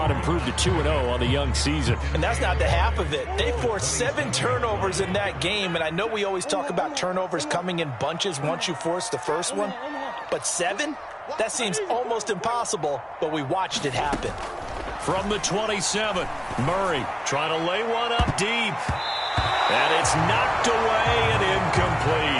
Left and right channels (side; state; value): both; identical; correlation 1.00